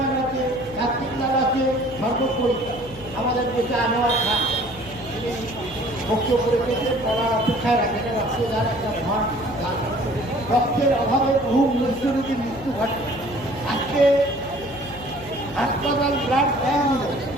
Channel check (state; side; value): noise; left; hum, 18 dB below the sound